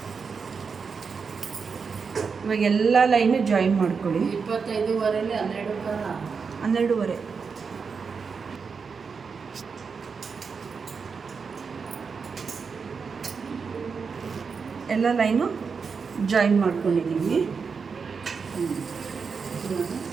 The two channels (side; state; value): left; quieter; 5.5 dB